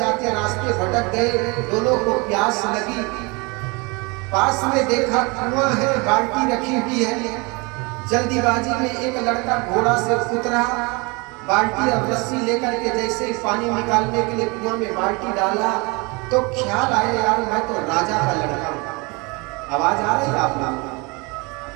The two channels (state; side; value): quieter; left; 28.2 dB